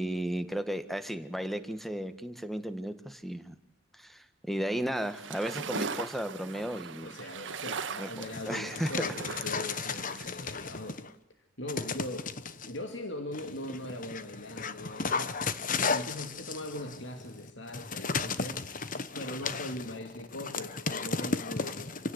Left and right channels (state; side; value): normal; both; correlation 0.34